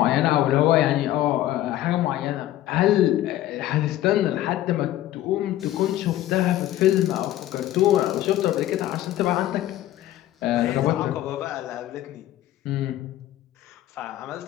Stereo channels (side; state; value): right; quieter; 13.9 dB